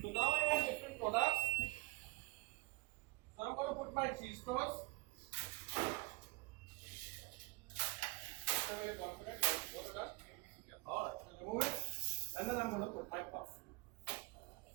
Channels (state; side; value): quieter; left; 26.3 dB